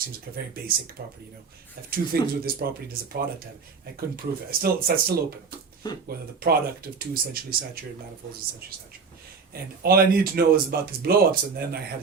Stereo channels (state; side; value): quieter; left; 5.2 dB